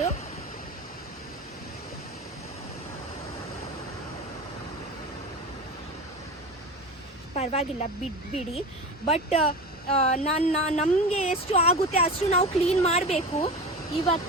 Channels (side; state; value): both; normal; correlation 0.29